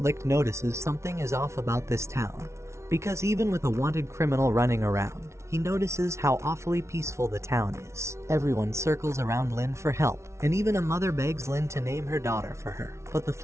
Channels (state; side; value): late; left; 0.13 ms